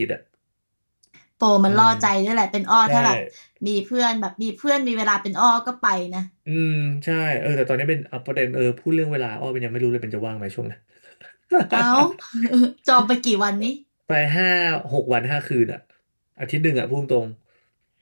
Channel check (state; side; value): inverted; both; correlation -1.00